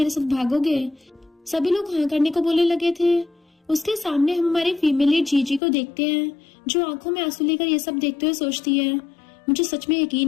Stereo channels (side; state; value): right; drops out; at 5.6 s